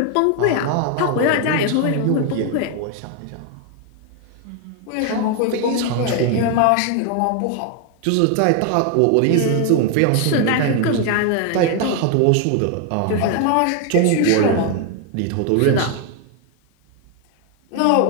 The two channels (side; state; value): both; different; correlation 0.01